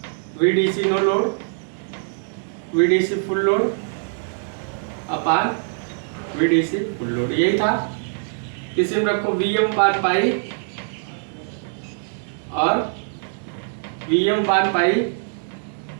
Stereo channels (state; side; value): silent; left; digital silence